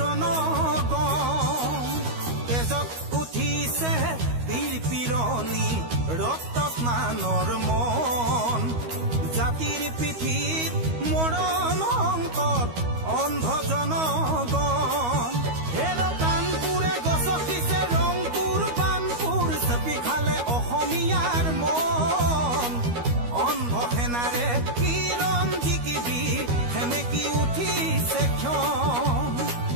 তেজত উঠিছে বীৰ পিৰণি ৰক্ত স্নানৰ মন জাতিৰ পিঠিত মৰণ সংকট অন্ধ জনগণ হেৰ কানপুৰে গছকিছে ৰংপুৰ বানপুৰ চেপি খালে অসমীয়াৰ মন অন্ধ সেনাৰে কিৰণ জিকিবি সেমেকি উঠিছে ক্ষণ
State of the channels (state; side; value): late; left; 13 ms